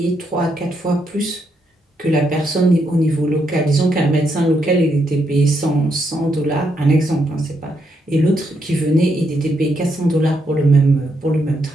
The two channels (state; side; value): normal; both; correlation 0.78